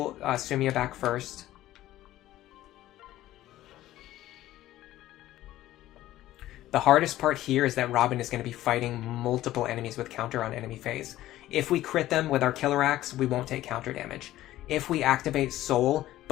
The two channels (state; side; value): quieter; right; 14.7 dB